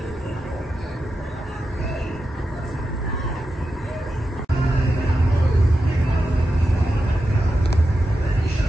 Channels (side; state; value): both; normal; correlation 0.89